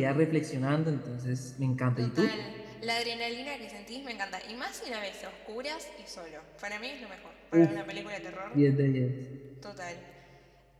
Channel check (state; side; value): identical; both; correlation 1.00